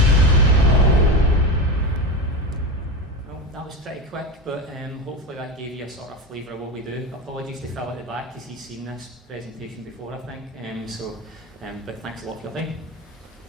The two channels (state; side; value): normal; both; correlation 0.21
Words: Pretty quick, but hopefully that gave you a sort of flavour of what we do. Apologies to Phil at the back because he's seen this presentation before, I think. But thanks a lot for your time.